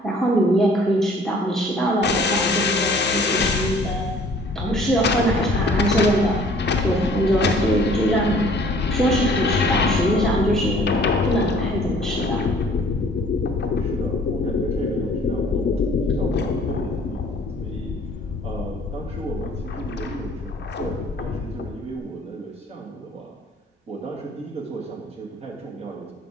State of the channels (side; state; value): both; normal; correlation 0.55